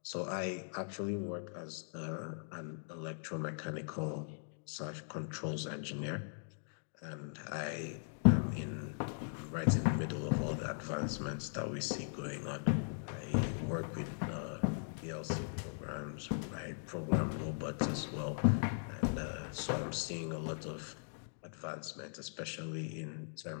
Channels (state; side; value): silent; right; digital silence